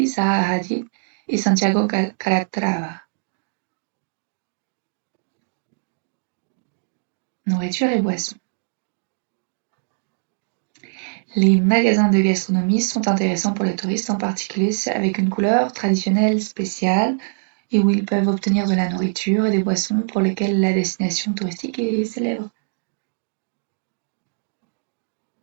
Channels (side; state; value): left; silent; digital silence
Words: Zaha Hadid et Santiago Calatrava. Nourriture et boissons. Les magasins de gastronomie sont intéressants pour les touristes, en particulier avec une couleur traditionnelle spéciale et où ils peuvent obtenir de la nourriture et des boissons pour lesquelles la destination touristique est célèbre.